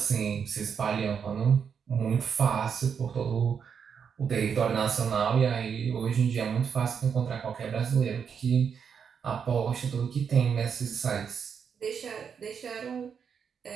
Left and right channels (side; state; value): left; quieter; 6.9 dB